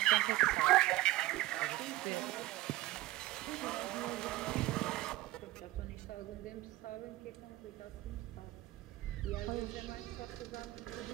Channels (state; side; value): quieter; left; 17.3 dB